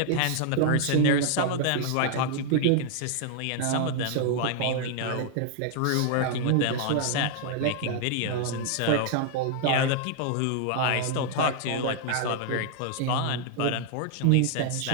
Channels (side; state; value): both; different; correlation 0.00